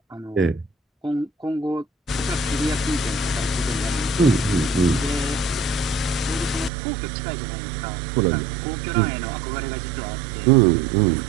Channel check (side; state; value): left; drops out; at 6.7 s